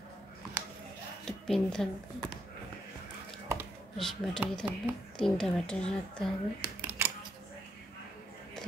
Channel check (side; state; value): both; normal; correlation 0.77